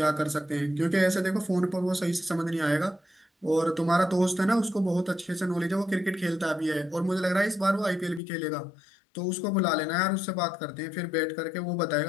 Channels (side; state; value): right; drops out; at 8.2 s